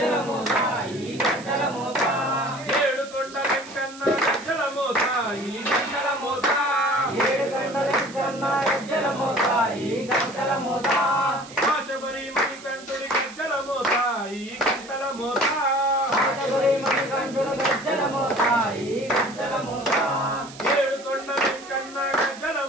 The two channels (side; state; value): right; noise; hiss, 18 dB below the sound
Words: మోత ఈ గజ్జల మోత ఏడుకొండ వెంకన్న గజ్జల మోత ఈ గజ్జల మోత ఏడుకొండ వెంకన్న గజ్జల మోత ఈ గజ్జల మోత ఆశబరి మణికంఠుని గజ్జల మోత ఈ గజ్జల మోత ఆశబరి మణికంఠుని గజ్జల మోత ఈ గజ్జల మోత ఏడుకొండ వెంకన్న గజ్జల